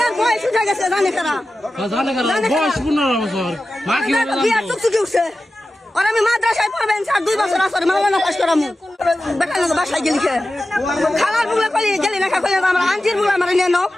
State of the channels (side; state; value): both; normal; correlation 0.93